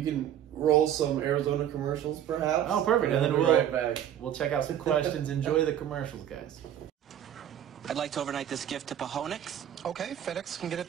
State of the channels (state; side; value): quieter; left; 10.5 dB